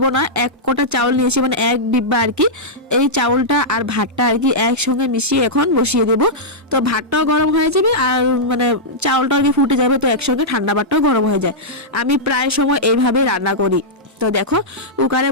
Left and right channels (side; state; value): both; normal; correlation -0.10